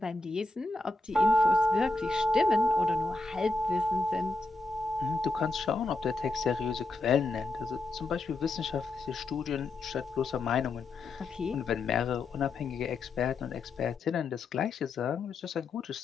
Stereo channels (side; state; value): right; quieter; 3.2 dB